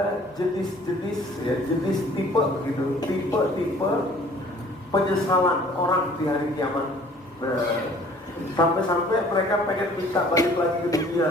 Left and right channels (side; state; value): both; normal; correlation 0.53